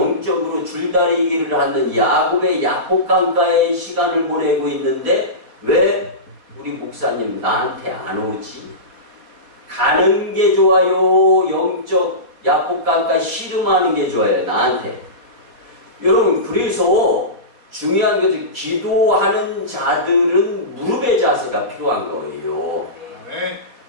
줄다리기를 하는 야곱의 야복강가의 시간을 보내고 있는데 왜 우리 목사님 나한테 안 오지? 가는 게 좋아요? 영적 야복강가 씨름하는 게 좋아요? 나한테. 여러분 그래서 중요한 것은 기도하는 자들은 무릎의 자세가 필요한 거예요. 아멘.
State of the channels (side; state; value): left; late; 4.2 ms